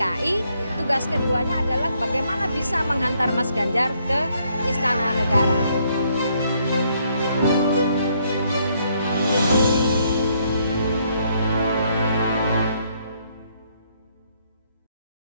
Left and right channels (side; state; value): both; inverted; correlation -0.71